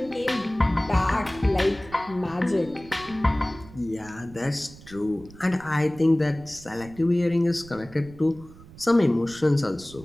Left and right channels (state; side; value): noise; right; rumble, 20 dB below the sound